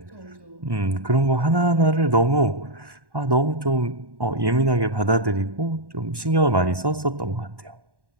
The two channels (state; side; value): late; left; 1.1 ms